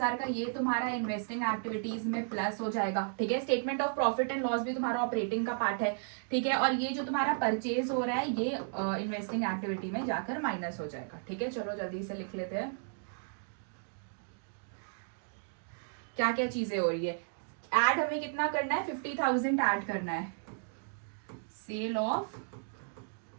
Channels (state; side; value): silent; left; digital silence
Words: का, ये तुम्हारा इन्वेस्टिंग एक्टिविटीज में प्लस हो जाएगा। ठीक है, statement of profit and loss भी तुम्हारा ऑपरेटिंग का पार्ट है। ठीक है, और ये जो तुम्हारा परचेज हो रहा है ये इन्वेस्टिंग एक्टिविटी में जाकर माइनस हो जाएगा। ठीक है, चलो जल्दी से लिख लेते हैं क्या क्या चीजें हो रही है। ऐड हमें कितना करना है, 50,000 ऐड करना है। सेल ऑफ